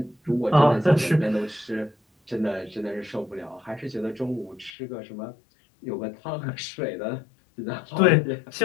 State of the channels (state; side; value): drops out; right; at 4.8 s